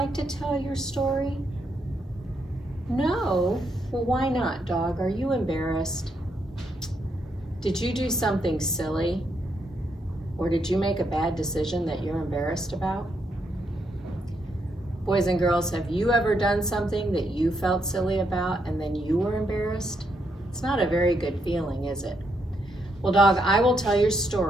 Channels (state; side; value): normal; both; correlation 0.78